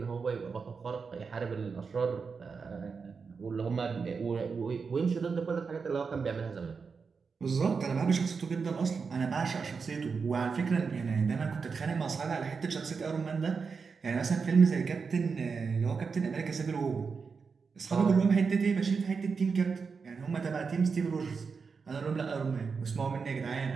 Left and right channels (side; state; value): left; quieter; 5.3 dB